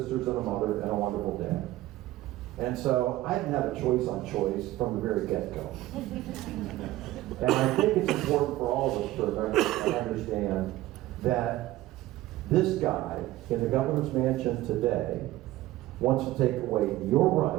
and a mother and a wonderful dad. And so I didn't have a choice on choice from the very get-go. And I think it's important for all of us to remember and understand that this guy in the governor's mansion today wants to take away your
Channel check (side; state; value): left; quieter; 16.2 dB